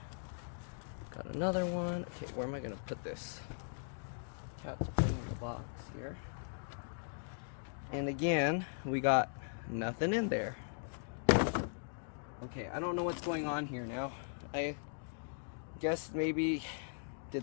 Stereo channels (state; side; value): silent; right; digital silence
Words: Got another one. Okay, where am I gonna put this? Cat's putting the box here. And again, we got nothing in there. Okay, I don't know what's going on here now. I guess maybe,